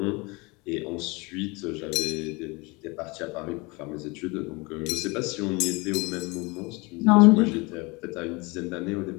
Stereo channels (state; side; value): quieter; right; 26.5 dB